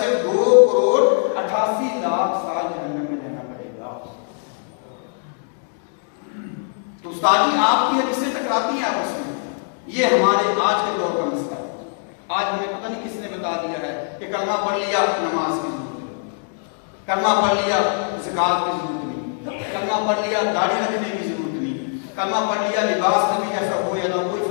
2,88,00,000 سال جہنم میں رہنا پڑے گا۔ تو استاد جی آپ کی حدیثیں ٹکراتی ہیں آپس میں، یہ ہمارے آج کے دور کا مسئلہ ہے۔ آج ہمیں پتہ نہیں کس نے بتا دیا ہے کہ کلمہ پڑھ لیا نماز کی ضرورت نہیں، کلمہ پڑھ لیا زکات کی ضرورت نہیں، کلمہ پڑھ لیا داڑھی رکھنے کی ضرورت نہیں، کلمہ پڑھ لیا لباس نبی جیسا ہو یا نہ کوئی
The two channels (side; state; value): right; silent; 64 dB below the other